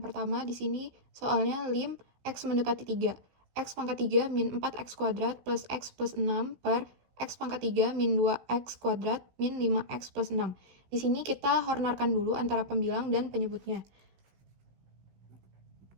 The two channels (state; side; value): late; left; 16 ms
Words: Di sini soalnya lim X mendekati 3. X pangkat 3 min 4X kuadrat plus X plus 6 per X pangkat 3 min 2X kuadrat min 5X plus 6. Di sini kita hornarkan dulu antara pembilang dan penyebutnya.